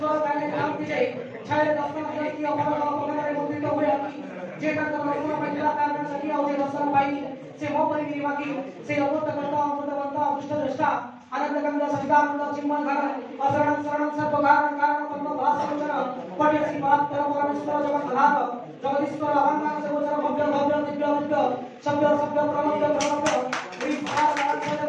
काले क्रांति जाई छाय दर्शन की अमर अपने मुद्रित हुए जे का कर्म महिला कारण सकी और दर्शन पाई से मो परिगिरी बाकी से अमृत करता अदृष्ट दृष्टा आनंद गंगा सवितानंद चिन्मय घर अशरण शरण सर्व कारण कारण पद्म भासवचन पट्यसी बात परम परमेश्वर जगत आधार जगदीश्वर अहंकार से गोचर भव्य भव्य दिव्य दिव्य सभ्य सभ्य प्रमव्य प्रमव्य विभाग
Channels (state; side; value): identical; both; correlation 1.00